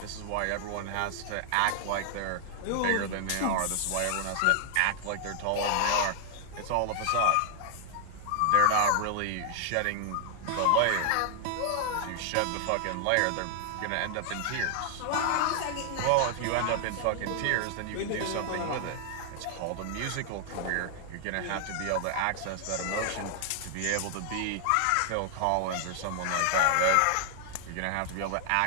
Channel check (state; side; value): different; both; correlation 0.00